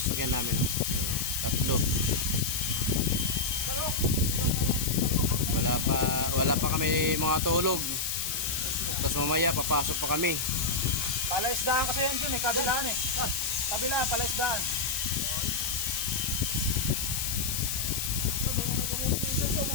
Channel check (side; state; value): left; noise; hiss, 1 dB below the sound